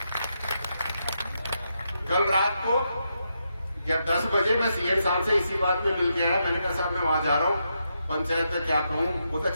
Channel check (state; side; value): inverted; both; correlation -0.83